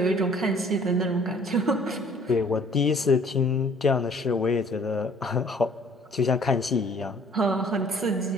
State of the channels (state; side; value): normal; both; correlation 0.56